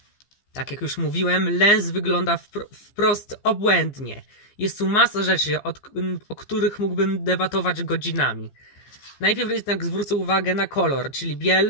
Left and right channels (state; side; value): late; right; 15 ms